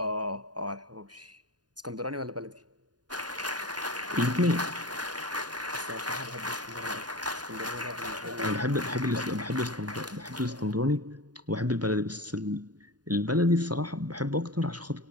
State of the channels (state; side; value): late; left; 0.69 ms